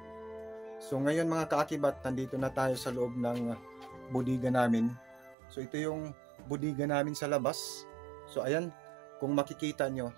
So, ngayon mga kaakibat, nandito na tayo sa loob ng bodega namin. So, ito yung bodega namin sa labas. So, ayan, kung makikita nyo,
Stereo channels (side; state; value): left; drops out; at 5.4 s